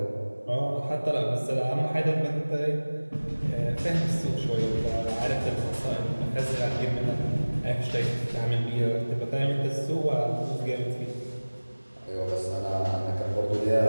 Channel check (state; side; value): inverted; both; correlation -1.00